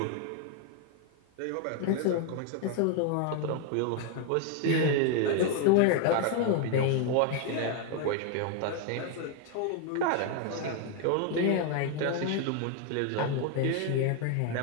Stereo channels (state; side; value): different; both; correlation 0.01